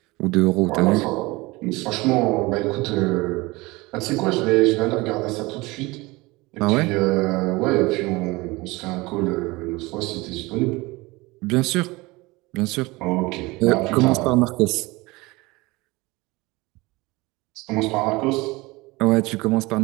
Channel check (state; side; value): quieter; left; 22.5 dB